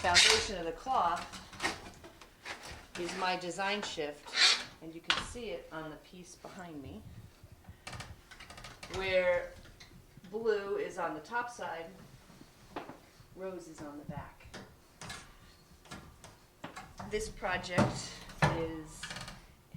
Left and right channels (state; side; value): identical; both; correlation 1.00